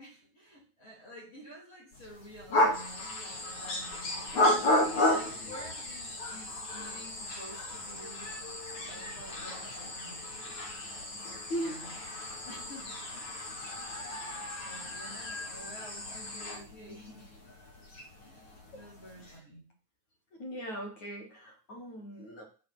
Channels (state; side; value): late; right; 9.3 ms